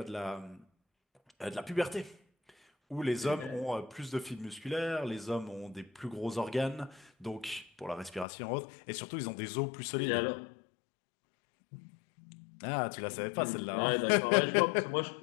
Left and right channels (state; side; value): drops out; right; at 8.2 s